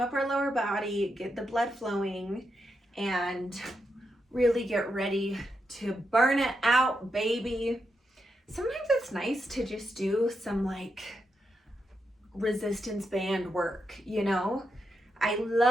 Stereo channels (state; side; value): normal; both; correlation 0.84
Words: up our lower body, get the blood flowing, and really get ready to burn it out, baby. Sometimes it's nice to just do some like resistance band work, you know? I